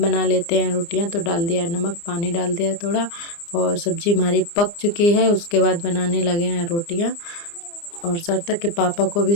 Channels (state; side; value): late; right; 29 ms